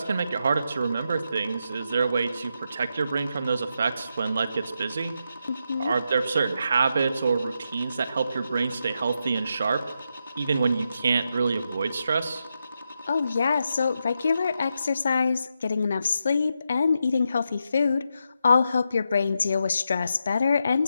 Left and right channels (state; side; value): inverted; both; correlation -0.84